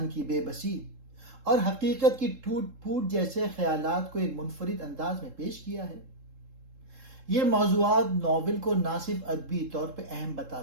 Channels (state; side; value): late; left; 3.7 ms